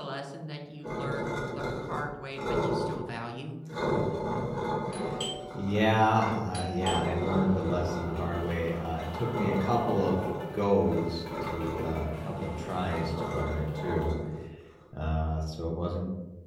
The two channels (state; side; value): identical; both; correlation 1.00